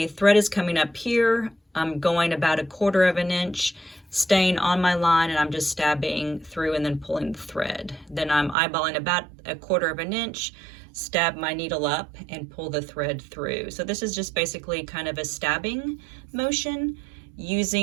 thread is coming up here. I'm going about 1/4 of an inch, staying on my line, and I'm just stabbing through and then pulling the thread. Then I'm eyeballing about 1/4 of an inch, stab my needle up and pull the thread through. So this is just basically kind of a stabbing motion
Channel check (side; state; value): left; drops out; at 8.6 s